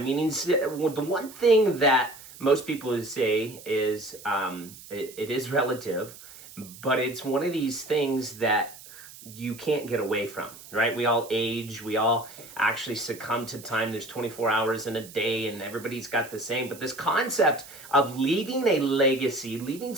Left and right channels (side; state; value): right; noise; hiss, 18 dB below the sound